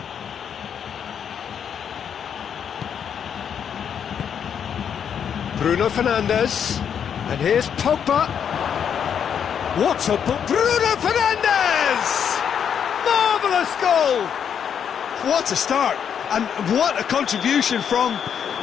Bruno Fernandes. And here's Pogba. What a ball! Bruno Fernandes! Marvellous goal! What a start, and what a contribution from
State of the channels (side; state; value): right; quieter; 8.0 dB